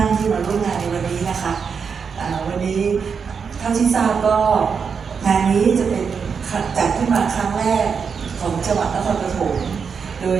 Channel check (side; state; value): left; quieter; 6.1 dB